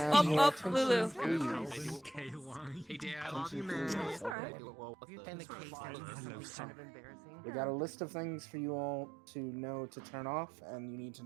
Lulu. Hey, Dad. And the case is kind of embarrassing. We got a list of things for you all to know to turn off, and you need to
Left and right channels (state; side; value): drops out; left; at 4.4 s